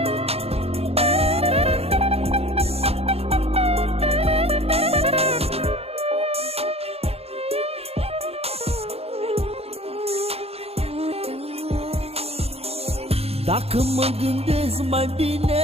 Dacă mă gândesc mai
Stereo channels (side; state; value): left; late; 0.29 ms